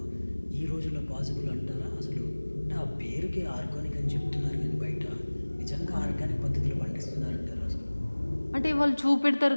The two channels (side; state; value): both; inverted; correlation -1.00